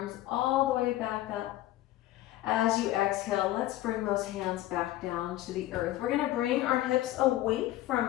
all the way back up. As you exhale, let's bring those hands back down to the earth. We're going to bring our hips away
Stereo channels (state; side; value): quieter; right; 15.2 dB